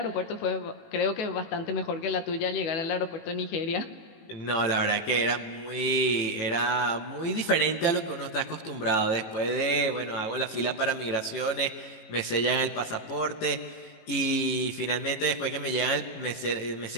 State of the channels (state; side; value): late; right; 18 ms